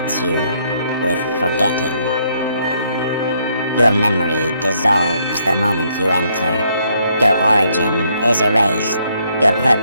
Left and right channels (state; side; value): inverted; both; correlation -0.71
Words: you with forgetting. Your memory dissolves the moment you enter. Your origin is erased. Your